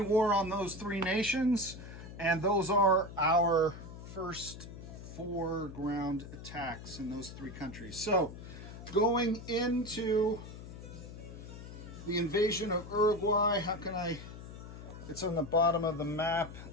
war on those 3 nations, and those are our first 4 ground attacks in those 3 countries. So going into the invasion of Uruguay, how can I, it's on the bottom of the map.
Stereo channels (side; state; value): left; noise; hum, 13 dB below the sound